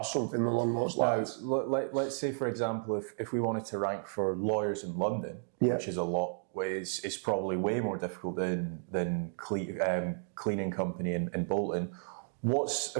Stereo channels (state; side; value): silent; left; digital silence